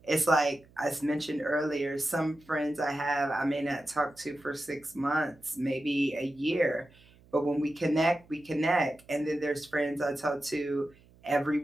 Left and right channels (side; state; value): right; noise; hum, 27 dB below the sound